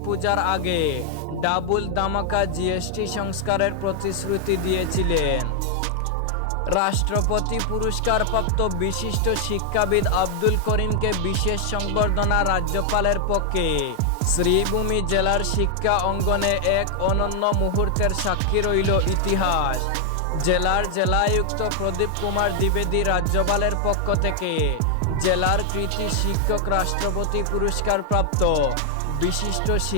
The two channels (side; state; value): both; different; correlation 0.00